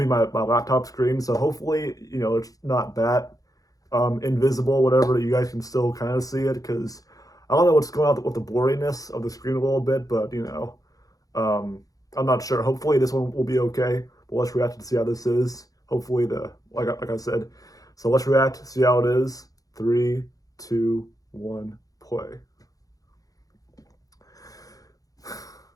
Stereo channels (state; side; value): late; right; 0.17 ms